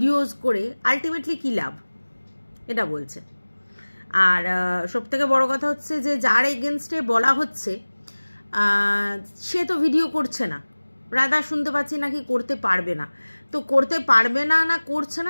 করে আলটিমেটলি কী লাভ, এটা বলছে। আর সবথেকে বড় কথা হচ্ছে যে যার এগেনস্টে বলা হচ্ছে সে তো ভিডিও করছে না। রাধা শুনতে পাচ্ছি নাকি করতে পারবে না, তো করতে পারবে না না করছে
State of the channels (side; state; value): both; inverted; correlation -1.00